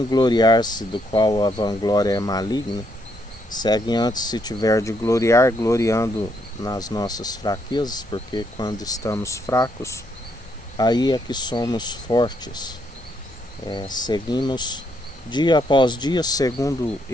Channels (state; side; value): normal; both; correlation 0.74